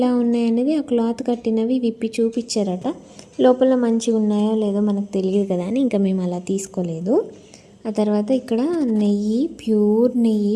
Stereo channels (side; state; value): both; identical; correlation 1.00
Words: ఉన్నాయనేది ఆ క్లాత్ కట్టినవి విప్పి చూపించారట. లోపల మంచిగా ఉన్నాయో లేదో మనకు తెలియదు కదా అని ఇంకా మేము అలా తీసుకోలేదు. ఆ తర్వాత ఇక్కడ నెయ్యి, ప్యూర్ నెయ్యి